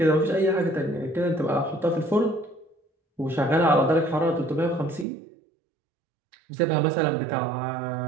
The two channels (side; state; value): left; drops out; at 5.1 s